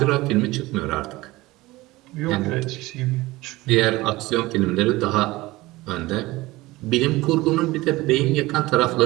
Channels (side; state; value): left; quieter; 19.7 dB